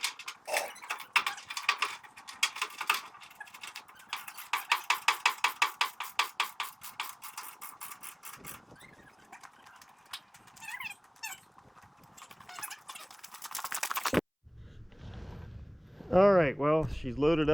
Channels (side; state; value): both; identical; correlation 1.00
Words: Alright, well, she's loaded